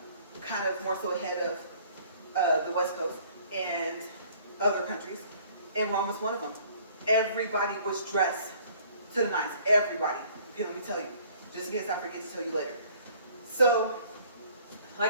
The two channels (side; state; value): both; inverted; correlation -0.56